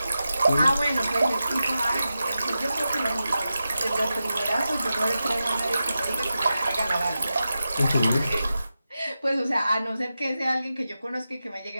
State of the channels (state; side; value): inverted; both; correlation -0.91